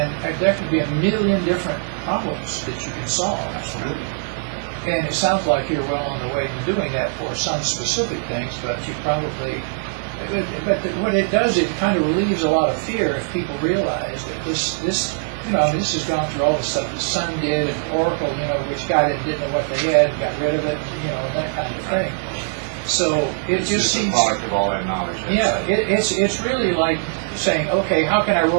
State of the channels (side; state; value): left; silent; digital silence